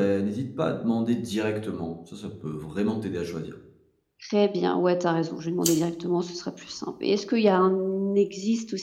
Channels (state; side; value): identical; both; correlation 1.00